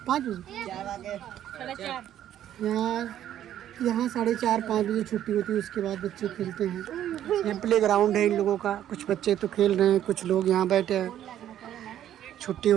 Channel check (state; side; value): quieter; left; 11.3 dB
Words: 5 बजे। यहाँ 4:30-5 बजे छुट्टी होती है। उसके बाद बच्चे खेलते हैं। यहाँ प्ले ग्राउंड है इन लोगों का। कुछ बच्चे तो खेल रहे हैं, कुछ लोग यहाँ बैठे हैं छुट्टी